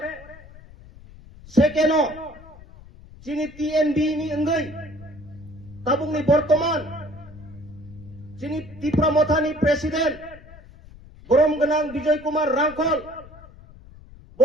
সেকেন্ড যিনি টিএনবি নি অঙ্গৈ তাবুংনি বর্তমান যিনি ত্রিপুরা মথানি প্রেসিডেন্ট বরম গনাং বিজয় কুমার রাংখল ব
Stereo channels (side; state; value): left; noise; rumble, 20 dB below the sound